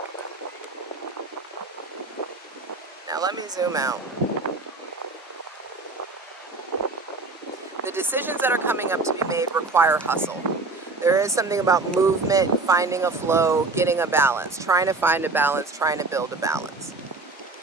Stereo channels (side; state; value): left; quieter; 3.6 dB